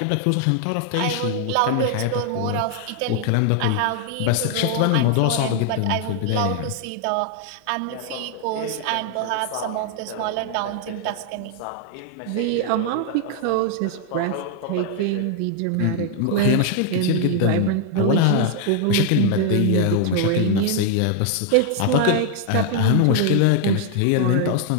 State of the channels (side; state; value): both; different; correlation 0.00